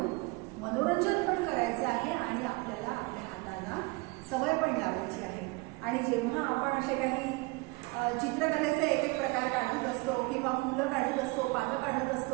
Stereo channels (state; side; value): quieter; left; 25.6 dB